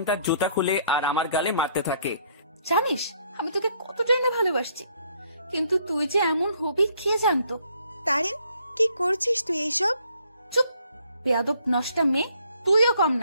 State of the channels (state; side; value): inverted; both; correlation -0.66